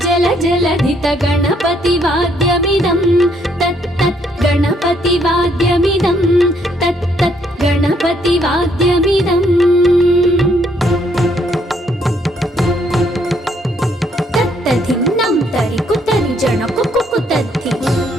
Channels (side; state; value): both; normal; correlation 0.69